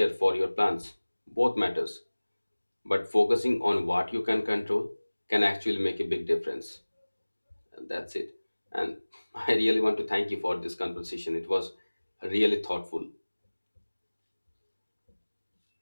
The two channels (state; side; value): inverted; both; correlation -1.00